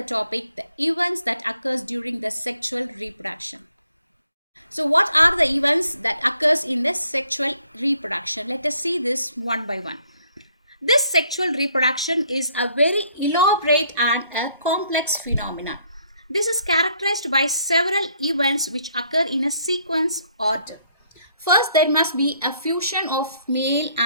topic, the events that occurs during the sexual reproduction. So what are the events that occurs in the sexual reproduction? Let us see this one by one. This sexual reproduction is a very elaborate and a complex phenomenon. This is characterized by several events which occur in a sequence order. First, there must be a fusion of male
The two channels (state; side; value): inverted; both; correlation -0.66